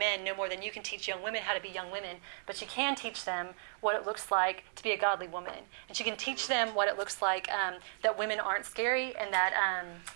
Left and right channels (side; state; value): left; silent; digital silence